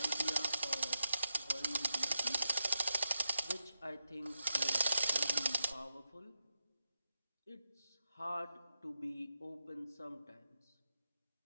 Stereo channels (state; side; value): inverted; both; correlation -0.87